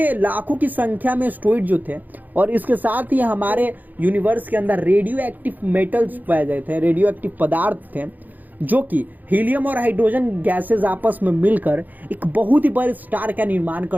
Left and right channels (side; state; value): left; late; 0.083 ms